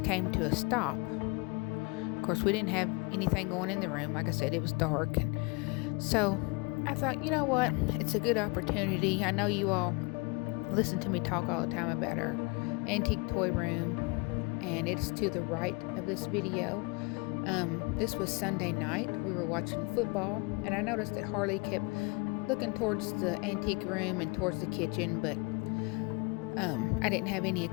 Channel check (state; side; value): quieter; right; 28.8 dB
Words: came to a stop. Of course, we didn't have anything going in the room. Like I said, it was dark, and so I thought, you know what? It's a good opportunity. I know you all listen to me talk all the time about our antique toy room, and it's to the right of this video. This was Sunday night. We were watching football, and I noticed that Harley kept looking towards the antique room and towards the kitchen, but I didn't have any